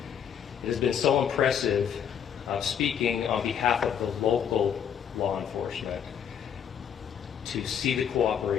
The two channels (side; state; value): right; quieter; 8.3 dB